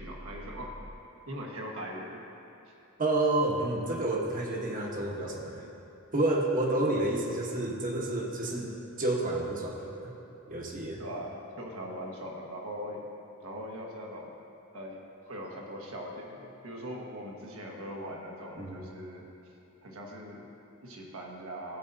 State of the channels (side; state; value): both; normal; correlation 0.23